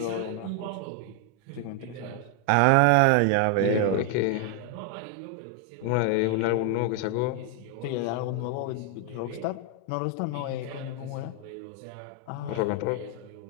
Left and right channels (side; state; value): both; different; correlation 0.00